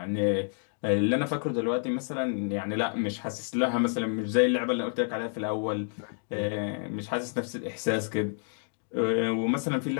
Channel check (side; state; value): right; silent; 58 dB below the other